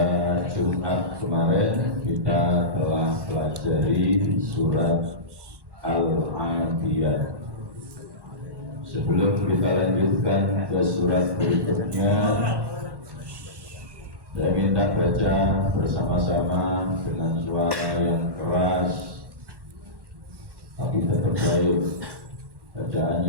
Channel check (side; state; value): left; late; 1.1 ms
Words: Jumat kemarin kita telah pelajari surat Al-Adiyat. Sebelum kita lanjutkan ke surat berikutnya, saya minta baca bersama-sama dengan suara yang keras tapi tetap baik,